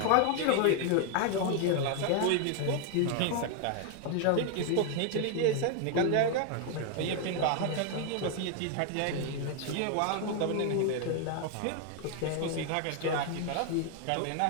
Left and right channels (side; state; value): both; different; correlation 0.00